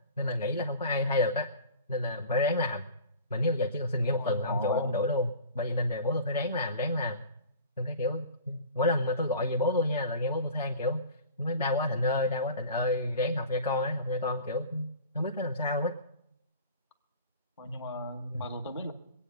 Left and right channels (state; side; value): inverted; both; correlation -0.41